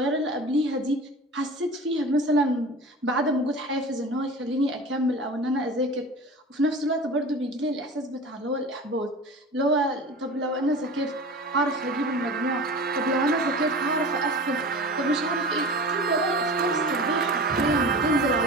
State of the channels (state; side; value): normal; both; correlation 0.35